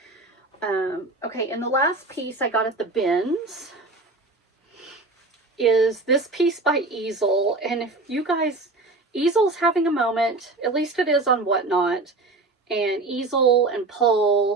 okay, and the last piece I got at the BINS is this piece by Easel. And if you guys, Easel's having a moment, at least it is on Whatnot, and Easel and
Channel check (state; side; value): quieter; left; 3.2 dB